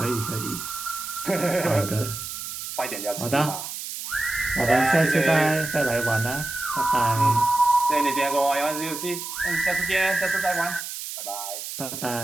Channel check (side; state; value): right; noise; hiss, 7 dB below the sound